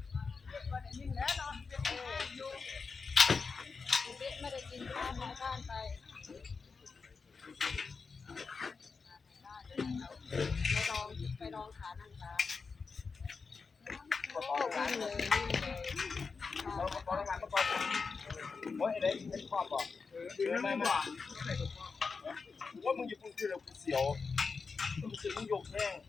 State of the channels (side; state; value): right; quieter; 4.9 dB